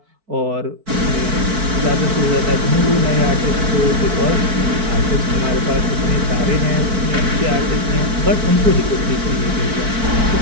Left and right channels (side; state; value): left; late; 4.5 ms